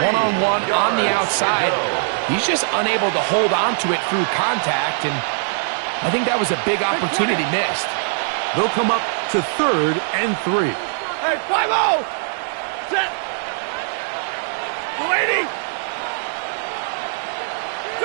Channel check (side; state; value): left; silent; 65 dB below the other